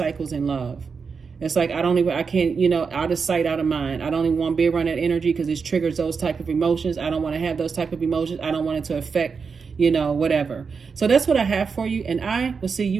in love. It's like, I can't, out of sight, out of mind. I don't even want to be around that energy because it triggers those type of emotions. I don't want to have those type of emotions. I don't want it to affect, whatever. So that's what I have for you. And I will see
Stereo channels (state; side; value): quieter; left; 5.4 dB